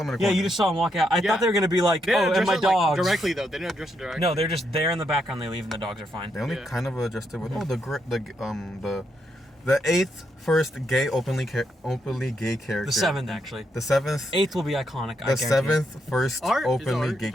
in a Yeah, corner. you just saw them walk out. I Yeah. thought they were gonna be like, They didn't oh, and address my it, like, dogs. directly though. They didn't address it directly. No, they're just there in the background. They leave, and the dogs are fine. They only Yeah. kind of adjusted with the eighth first gay openly gay character. The seventh, actually. The seventh. Eighth will be iconic. I The guarantee. seventh first Art? Is openly Art- gay is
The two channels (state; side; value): normal; both; correlation 0.79